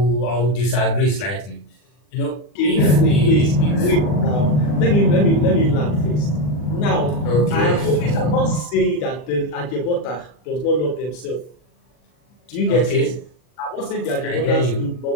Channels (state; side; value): late; right; 40 ms